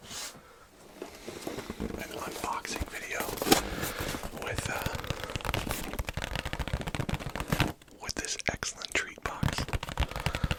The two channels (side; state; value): both; identical; correlation 1.00